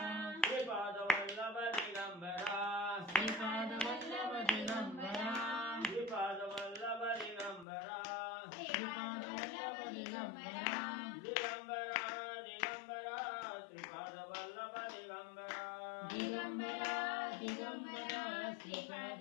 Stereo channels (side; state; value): right; drops out; at 7.7 s